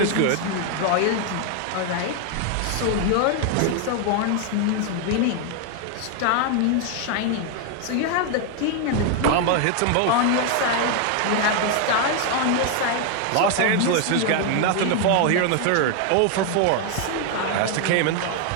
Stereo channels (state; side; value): different; both; correlation 0.00